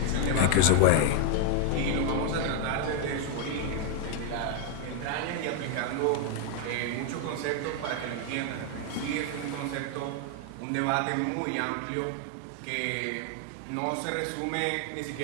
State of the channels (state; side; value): different; both; correlation 0.00